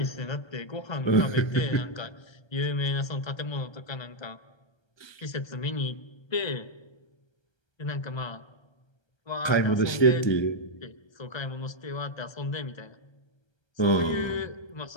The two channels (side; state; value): right; late; 1.3 ms